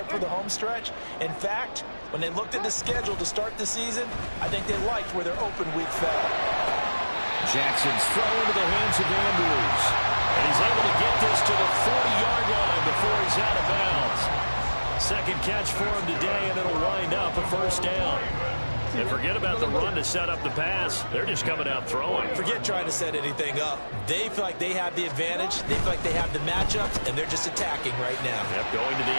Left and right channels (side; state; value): both; inverted; correlation -1.00